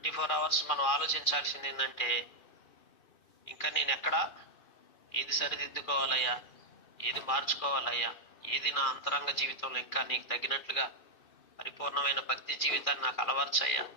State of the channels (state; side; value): late; right; 2.4 ms